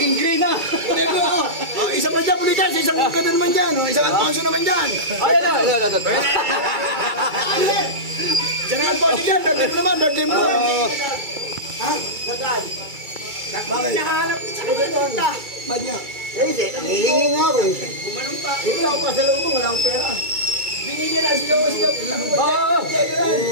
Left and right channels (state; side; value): late; left; 2.3 ms